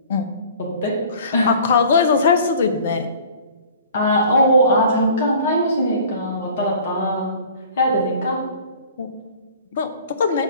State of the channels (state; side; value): inverted; both; correlation -0.47